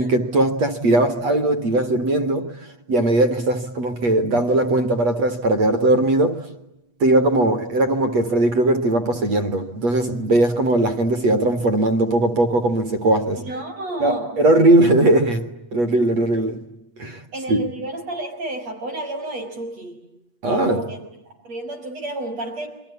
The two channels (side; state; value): left; late; 8.4 ms